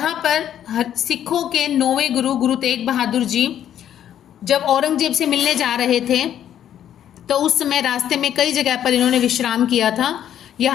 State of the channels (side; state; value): right; quieter; 10.4 dB